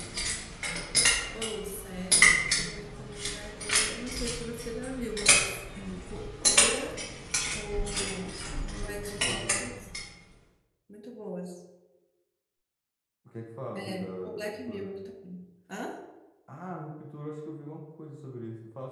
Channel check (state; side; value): identical; both; correlation 1.00